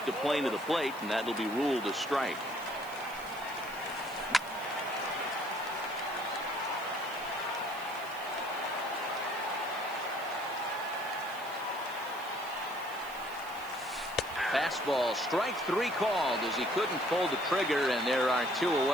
the plane of the plate, and that'll be ruled a strike. Fastball, strike three called as he couldn't pull the trigger, and there are two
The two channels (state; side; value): noise; right; hiss, 18 dB below the sound